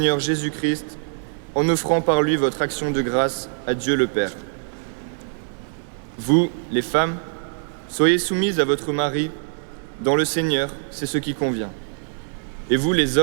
Jésus-Christ, en offrant par lui votre action de grâce à Dieu le Père. Vous, les femmes, soyez soumises à votre mari. Dans le Seigneur, c'est ce qui convient. Et vous, les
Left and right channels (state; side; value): silent; left; 63 dB below the other